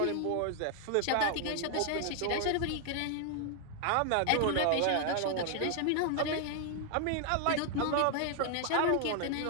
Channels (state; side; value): different; both; correlation 0.00